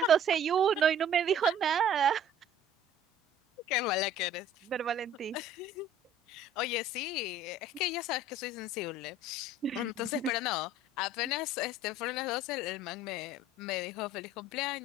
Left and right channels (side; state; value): both; normal; correlation 0.49